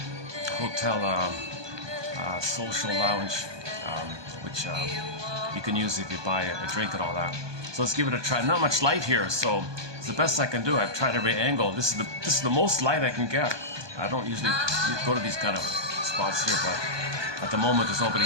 hotel social lounge, which you can use if you buy a drink and all that. So let's give it a try. Not much light here, so it's the best I can do. I've tried every angle. This is the most light I can get. I don't usually go to these kind of spots here, but at the moment there's nobody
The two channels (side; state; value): left; late; 1.2 ms